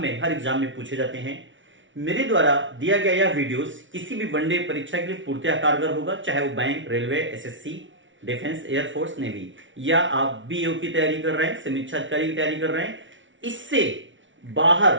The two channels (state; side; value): late; left; 0.56 ms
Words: एग्जाम में पूछे जाते हैं। मेरे द्वारा दिया गया यह वीडियोस किसी भी वनडे परीक्षा के लिए पूर्णतः कारगर होगा, चाहे वो bank, railway, SSC, defence, air force, navy, या आप बीओ की तैयारी कर रहे हैं, समीक्षा अधिकारी की तैयारी कर रहे हैं। इससे बाहर